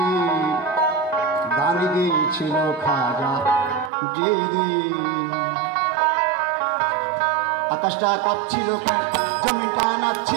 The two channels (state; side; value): drops out; left; at 3.9 s